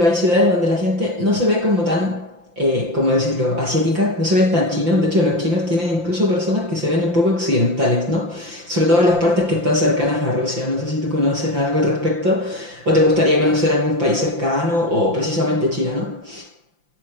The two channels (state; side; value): late; left; 5.8 ms